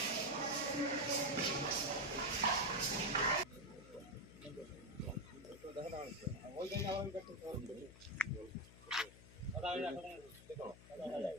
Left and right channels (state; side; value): noise; left; hum, 19 dB below the sound